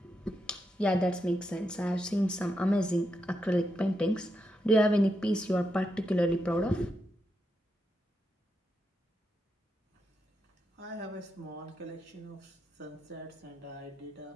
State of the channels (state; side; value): normal; both; correlation 0.84